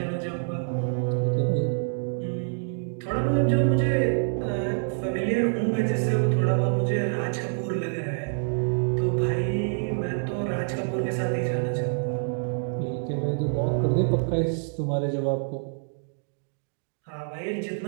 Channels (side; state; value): left; silent; digital silence